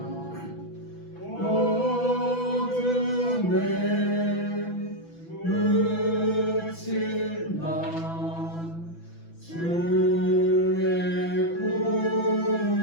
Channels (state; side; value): late; right; 6.0 ms